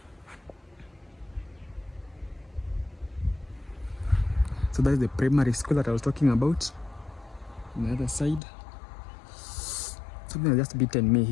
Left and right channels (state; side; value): drops out; right; at 8.4 s